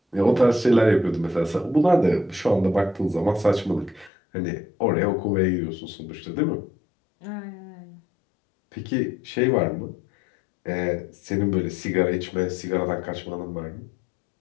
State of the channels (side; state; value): right; drops out; at 4.1 s